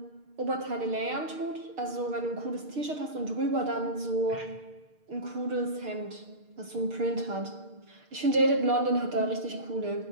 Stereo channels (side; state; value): left; late; 6.5 ms